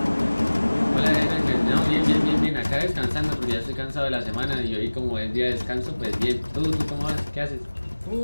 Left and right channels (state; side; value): inverted; both; correlation -1.00